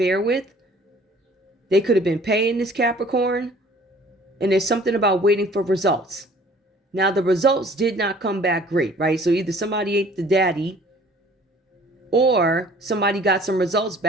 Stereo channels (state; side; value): normal; both; correlation 0.53